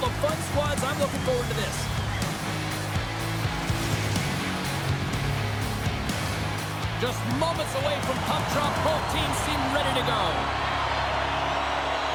of fun squads. I'm looking forward to this. Just moments away from puck drop, both teams seem ready to go.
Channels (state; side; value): identical; both; correlation 1.00